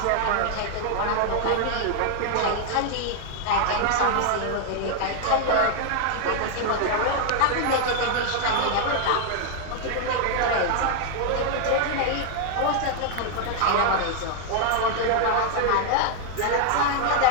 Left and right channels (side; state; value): both; different; correlation 0.00